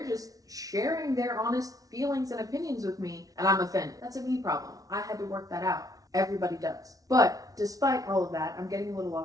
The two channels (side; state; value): left; late; 0.18 ms